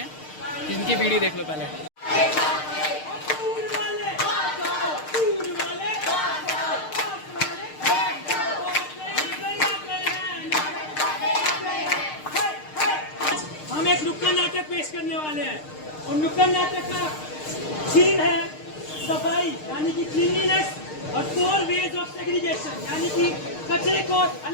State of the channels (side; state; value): right; late; 6.5 ms